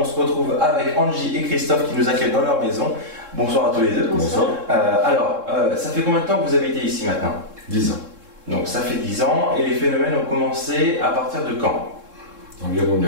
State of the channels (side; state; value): left; late; 3.7 ms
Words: se retrouve avec Angie et Christophe qui nous accueillent dans leur maison. Bonsoir à tous les deux. Bonsoir. Ça fait combien de temps que vous habitez ici maintenant ? 10 ans. Donc ça fait 10 ans et les phénomènes ont commencé à partir de quand ? Environ